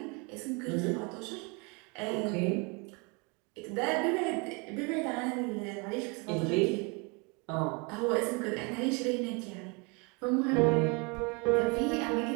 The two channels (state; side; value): quieter; left; 31.0 dB